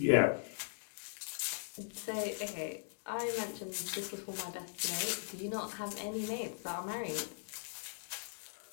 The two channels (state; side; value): silent; right; digital silence